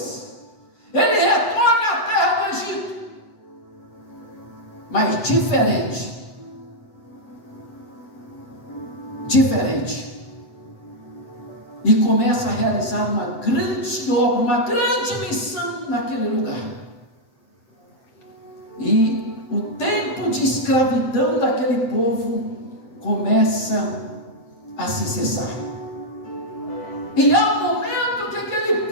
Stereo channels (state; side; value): late; right; 7.9 ms